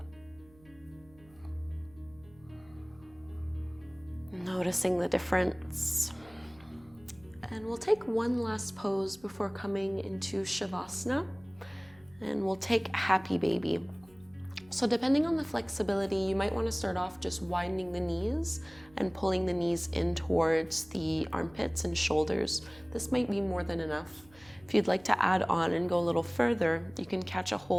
Noticing the difference. And we'll take one last pose before coming into Savasana. And we'll take Happy Baby. So depending on the flexibility, you might want to start off just widening the knees and pulling the knees in towards the armpits and shoulders. This might be more than enough. If you'd like to add on and go a little further, you can catch a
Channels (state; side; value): noise; right; hum, 27 dB below the sound